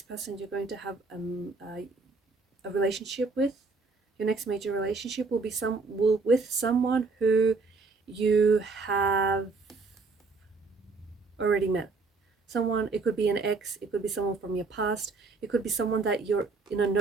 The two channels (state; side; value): quieter; left; 4.1 dB